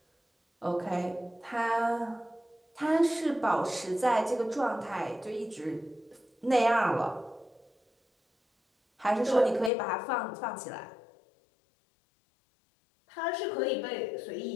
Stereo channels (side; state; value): right; drops out; at 9.7 s